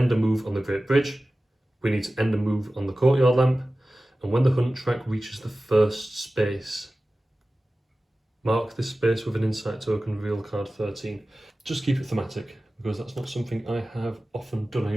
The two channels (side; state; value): both; normal; correlation 0.96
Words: a move on the Great Bridge. We need to end a move on the Courtyard Lamp. And when the hunt track reaches the first space, mark this space with an insight token, reveal card 13. Just keep it thematic, because that's not something I have often done. I